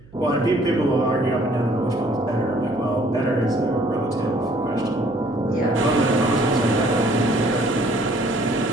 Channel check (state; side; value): noise; right; hum, 24 dB below the sound